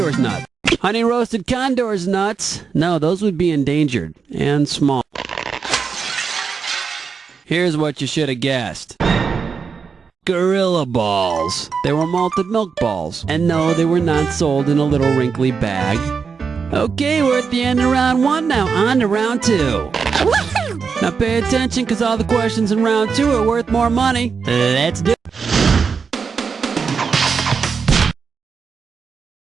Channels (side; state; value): left; quieter; 5.6 dB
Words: nuts? Honey roasted condor's nuts? No, those would be endangered and small. Here's what you should have guessed. Gorilla balls. They were malted milk balls. And no, they were not sold in a little wrinkly bag. Okay, we're at the end of round 1 now. On to round 2. Now pay attention, because all the questions in round 2 are worth more money. Let's do it.